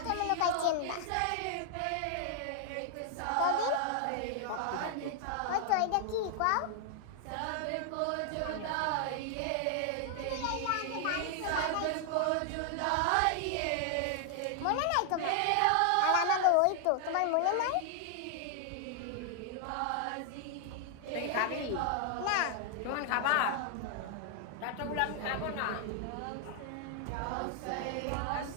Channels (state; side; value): different; both; correlation 0.00